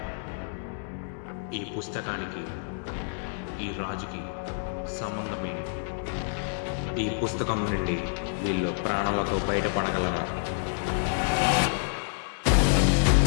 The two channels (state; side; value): silent; right; digital silence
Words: ఈ పుస్తకానికి ఈ రాజుకి సంబంధమేంటి? ఈ పుస్తకం నుండి వీళ్ళు ప్రాణాలతో బయటపడగలరా?